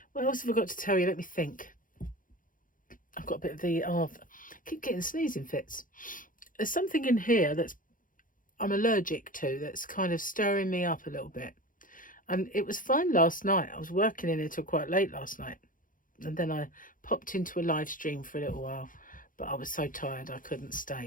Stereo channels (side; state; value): right; late; 0.39 ms